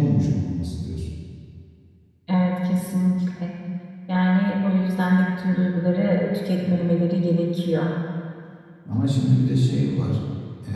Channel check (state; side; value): identical; both; correlation 1.00